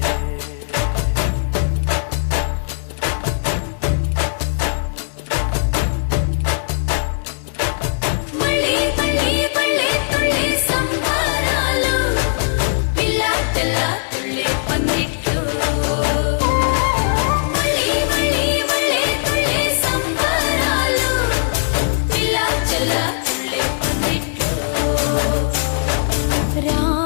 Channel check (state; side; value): silent; right; digital silence